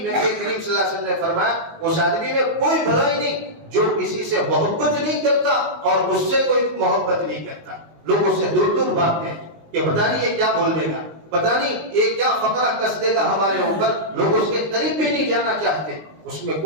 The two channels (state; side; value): late; left; 19 ms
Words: کریم صلی اللہ علیہ وسلم نے فرمایا اس آدمی میں کوئی بھلائی نہیں جو کسی سے محبت نہیں کرتا اور اس سے کوئی محبت نہیں کرتا۔ لوگ اس سے دور دور بھاگتے ہیں کہ پتہ نہیں یہ کیا بول دے گا، پتہ نہیں یہ کیا فقرہ کس دے گا ہمارے اوپر، لوگ اس کے قریب بھی نہیں جانا چاہتے، اس میں